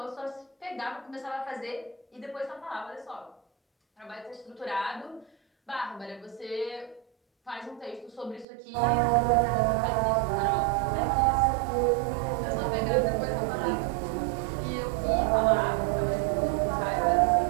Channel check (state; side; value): drops out; left; at 8.5 s